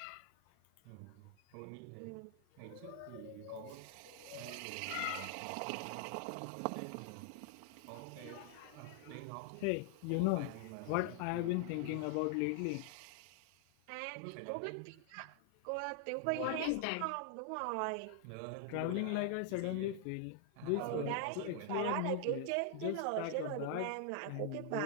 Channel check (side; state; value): both; different; correlation 0.00